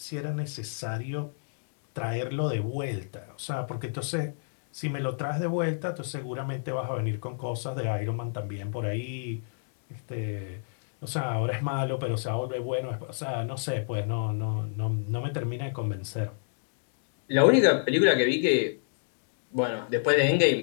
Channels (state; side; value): silent; right; digital silence